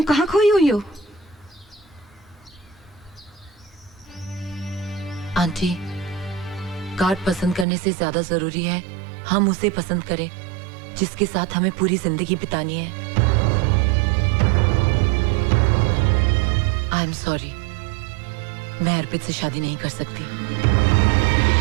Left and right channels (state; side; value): drops out; left; at 7.7 s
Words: कहाँ खोई हुई हो? आंटी, कार्ड पसंद करने से ज्यादा जरूरी है हम उसे पसंद करें जिसके साथ हमें पूरी जिंदगी बितानी है। आई एम सॉरी, मैं अर्पित से शादी नहीं कर सकती।